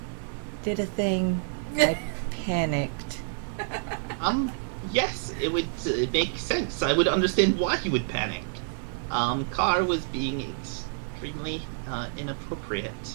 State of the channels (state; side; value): silent; left; digital silence